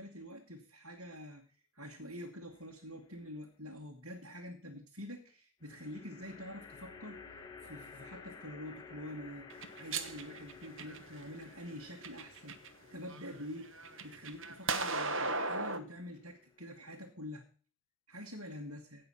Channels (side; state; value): both; normal; correlation -0.11